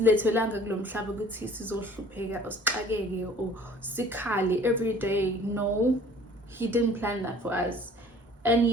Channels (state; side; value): normal; both; correlation 0.50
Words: or sikhali every day. No, he didn't plan that for us. And